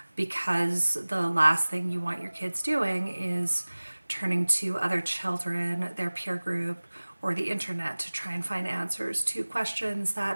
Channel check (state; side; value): inverted; both; correlation -1.00